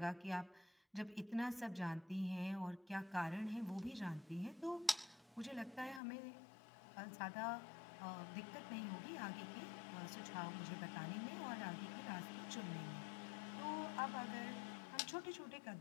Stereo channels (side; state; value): right; drops out; at 6.0 s